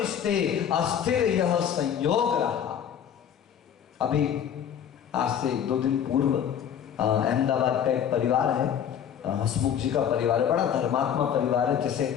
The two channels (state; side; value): quieter; right; 8.9 dB